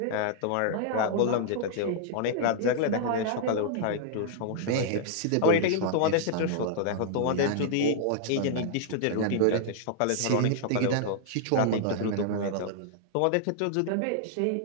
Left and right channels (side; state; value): both; different; correlation -0.01